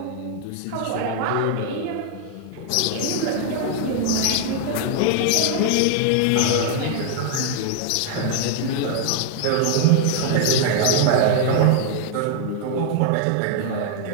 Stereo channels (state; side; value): different; both; correlation 0.00